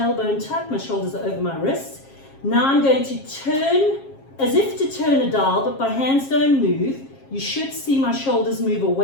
tucked, my shoulders are over my wrists. Now I'm going to turn, as if to turn a dial, but my hands don't move. You should see my shoulders move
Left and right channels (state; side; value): late; right; 7.4 ms